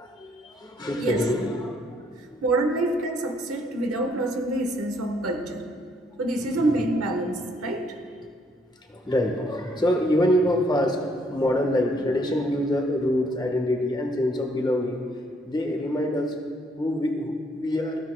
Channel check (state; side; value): normal; both; correlation 0.68